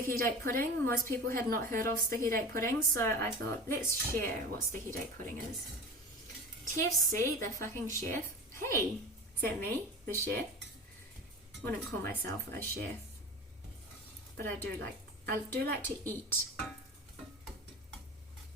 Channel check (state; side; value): normal; both; correlation 0.32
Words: date pudding, most people had not heard of sticky date pudding, so I thought, let's share what sticky date pudding is. TFC, the fucking chef. Hey, is that me, the chef? Wouldn't call myself a chef, but I do like to eat.